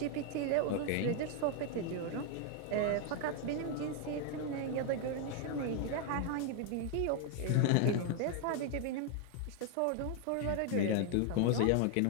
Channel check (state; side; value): different; both; correlation 0.00